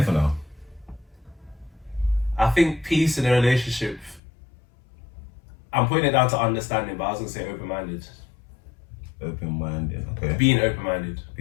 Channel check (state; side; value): drops out; right; at 4.2 s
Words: now. I think peace in a relationship, I'm putting it down to understanding, but I was going to say open-minded. Open-minded, okay. Being open-minded.